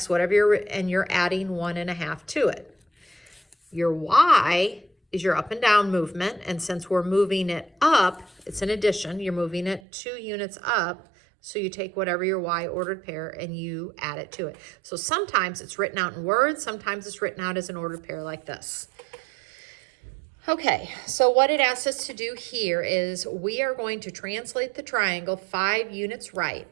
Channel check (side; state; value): left; drops out; at 9.8 s